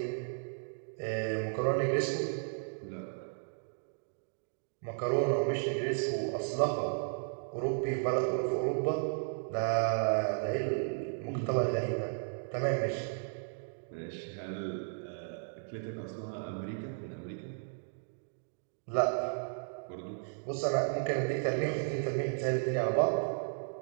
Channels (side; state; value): left; silent; digital silence